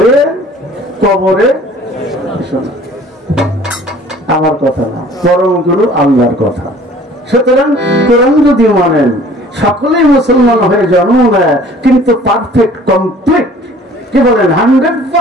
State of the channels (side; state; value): both; normal; correlation 0.51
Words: কবরে। আমার কথা না, পরম গুরু আল্লাহর কথা। সুতরাং কোরআন যদি মানেন, সকলেই মুসলমান হয়ে জন্ম নেয়, কিন্তু পারফেক্ট কমপ্লিট, কি বলেন,